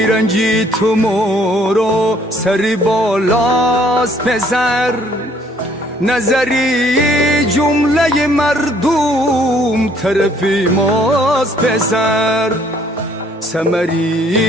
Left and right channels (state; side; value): normal; both; correlation 0.62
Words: رنجی تو مورو سری بالاست پسر نظری جمله مردم طرفی ماست پسر